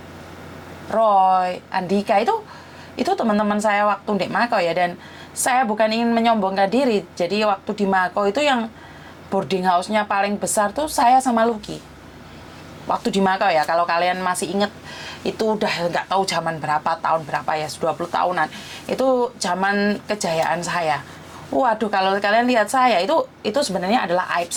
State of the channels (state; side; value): identical; both; correlation 1.00